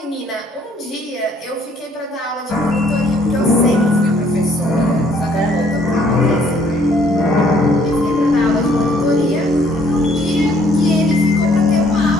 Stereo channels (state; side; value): normal; both; correlation 0.63